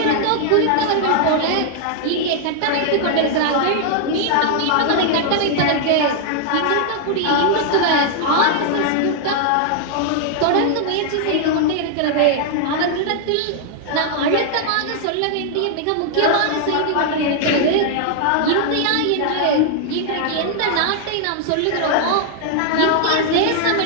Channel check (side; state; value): both; different; correlation -0.01